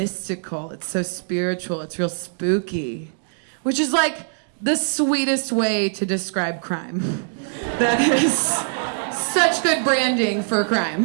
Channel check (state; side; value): silent; left; digital silence